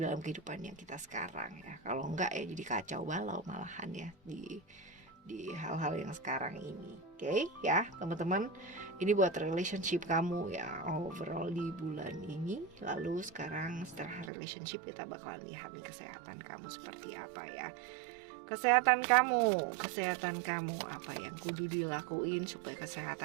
kehidupan yang kita sekarang ya. Kalau enggak ya jadi kacau balau malahan ya di hal-hal yang sekarang ini. Oke ya teman-teman, ini buat relationship kamu ya overall di bulan ini. Lalu sekarang setelah relationship kita bakalan lihat nih kesehatan kamu seperti apa ya. kesehatan kamu apa yang kudu dilakuin supaya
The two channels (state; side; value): drops out; left; at 14.3 s